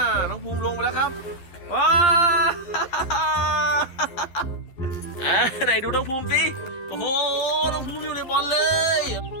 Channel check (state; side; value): late; right; 11 ms